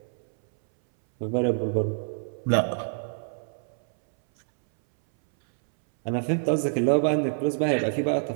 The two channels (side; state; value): left; silent; 61 dB below the other